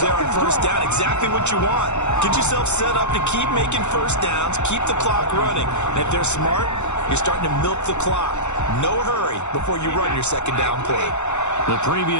on first down. Exactly what you want. Get yourself set up to keep making first downs, keep the clock running. And if they're smart, you're starting to milk the clock. No hurry before you run your 2nd down play. The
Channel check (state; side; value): late; right; 0.83 ms